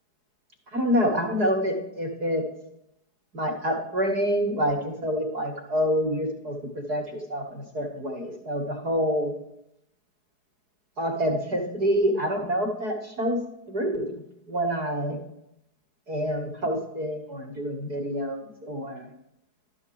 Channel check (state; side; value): late; left; 4.7 ms